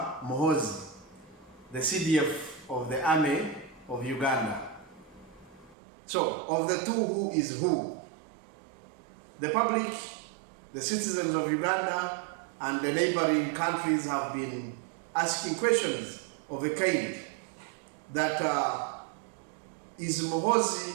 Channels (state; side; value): drops out; left; at 5.8 s